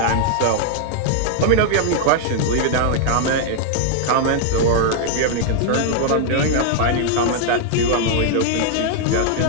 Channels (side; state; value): both; different; correlation 0.00